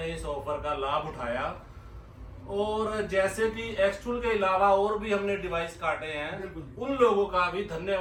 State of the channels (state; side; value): identical; both; correlation 1.00